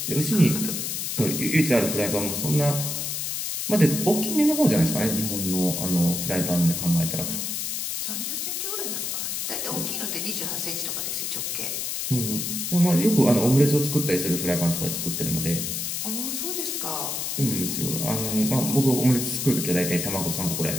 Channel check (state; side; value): noise; left; hiss, 2 dB below the sound